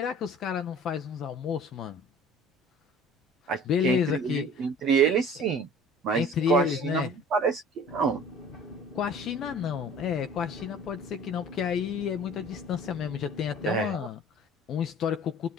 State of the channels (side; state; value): both; normal; correlation 0.46